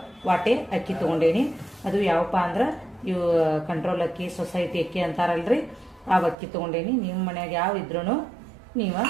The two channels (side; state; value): left; drops out; at 6.4 s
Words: ವಾಟೆ ಅಕ್ಕಿ ತಗೊಂಡೇನಿ. ಅದು ಯಾವಪ್ಪ ಅಂದ್ರ ಇವು ಕಂಟ್ರೋಲ್ ಅಕ್ಕಿ, ಸೊಸೈಟಿ ಅಕ್ಕಿ ಅಂತಾರಲ್ರಿ, ಆ ಅಕ್ಕಿ ತಗೊಂಡೇನಿ. ನಿಮ್ಮ ಮನ್ಯಾಗ ಯಾವ ಇದ್ರೂ ನೀವು